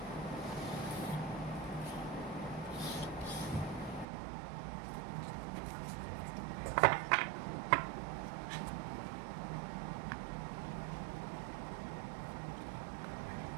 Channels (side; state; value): left; drops out; at 4.0 s